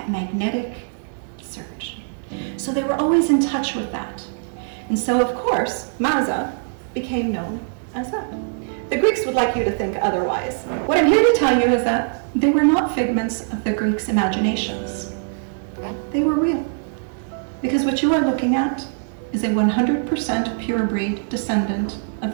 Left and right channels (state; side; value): silent; left; digital silence